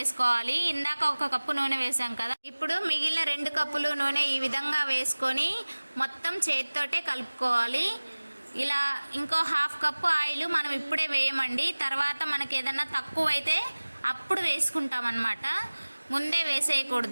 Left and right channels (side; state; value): both; inverted; correlation -1.00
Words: ఇందాక 1 కప్పు నూనె వేసాం కదా, ఇప్పుడు మిగిలిన 2 కప్పులు నూనె ఈ విధంగా వేసుకొని మొత్తం చేత్తోటే కలుపుకోవాలి. ఇలా ఇంకో 1/2 కప్పు ఆయిల్ మనం ఇప్పుడే వేయమండి, తర్వాత మనకి ఏదన్నా తక్కువ అయితే అప్పుడు వేసుకుంటామన్నమాట, ముందే